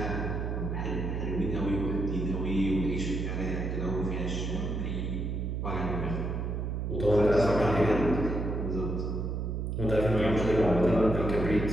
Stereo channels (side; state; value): right; noise; hum, 2 dB below the sound